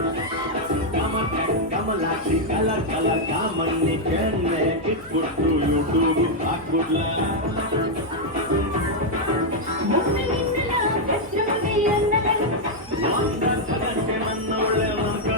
ಕಲರ್ ಕಲರ್ ಕಾಮಣ್ಣಿ ಕೆನ್ನೆ ಕಿಟ್ಬಿಟ್ಟು ಯೂಟ್ಯೂಬ್ ಹಾಕ್ಬಿಡ್ಲ ನನ್ನ ಒಳ್ಳೆ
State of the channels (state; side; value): noise; left; hum, 23 dB below the sound